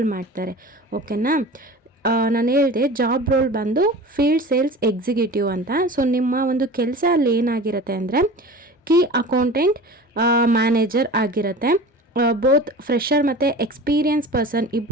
ಮಾಡ್ತಾರೆ. ಓಕೆನಾ? ನಾನು ಹೇಳಿದೆ ಜಾಬ್ ರೋಲ್ ಬಂದು ಫೀಲ್ಡ್ ಸೇಲ್ಸ್ ಎಕ್ಸಿಕ್ಯೂಟಿವ್ ಅಂತ. ಸೊ ನಿಮ್ಮ ಒಂದು ಕೆಲಸ ಅಲ್ಲಿ ಏನಾಗಿರುತ್ತೆ ಅಂದರೆ ಕೀ ಅಕೌಂಟೆಂಟ್ ಮ್ಯಾನೇಜರ್ ಆಗಿರುತ್ತೆ. ಬೋತ್ ಫ್ರೆಷರ್ ಮತ್ತು ಎಕ್ಸ್ಪೀರಿಯನ್ಸ್ ಪರ್ಸನ್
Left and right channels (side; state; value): both; normal; correlation 0.36